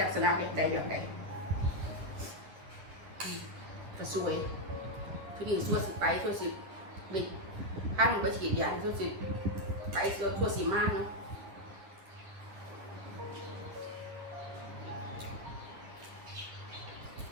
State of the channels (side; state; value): left; late; 10 ms